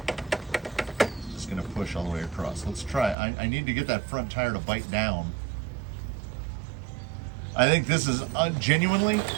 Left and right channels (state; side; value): drops out; left; at 3.2 s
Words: push all the way across? Let's try. I need to get that front tire to bite down. I think this is genuinely,